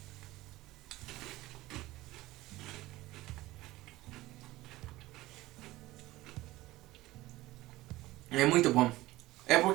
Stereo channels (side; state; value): left; quieter; 18.0 dB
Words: É muito bom. É